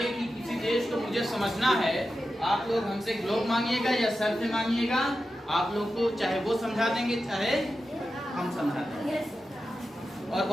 कि किसी देश को मुझे समझना है, आप लोग हमसे ग्लोब मांगिएगा या सर से मांगिएगा, आप लोग को चाहे वो समझा देंगे चाहे हम समझा देंगे। और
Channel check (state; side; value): normal; both; correlation 0.91